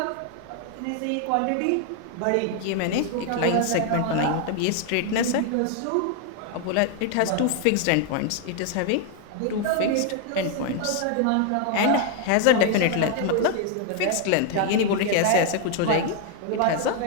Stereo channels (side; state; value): both; different; correlation 0.00